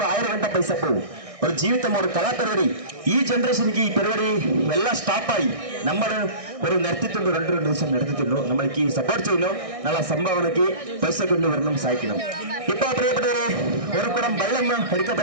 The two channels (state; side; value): late; left; 1.6 ms